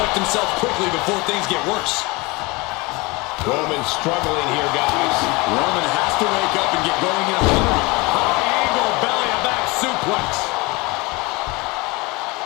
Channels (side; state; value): right; quieter; 24.8 dB